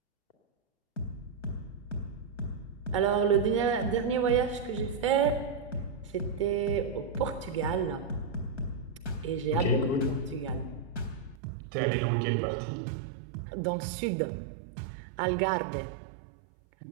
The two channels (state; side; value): drops out; left; at 11.4 s